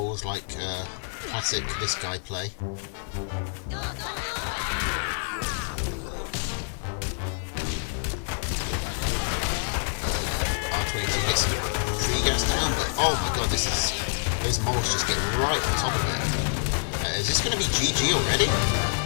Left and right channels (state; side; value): silent; right; 60 dB below the other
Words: like classic this guy play. Oh my god, those moles just get right on top of it. Is this going to be GG already?